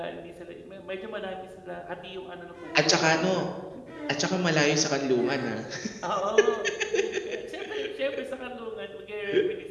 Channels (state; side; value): identical; both; correlation 1.00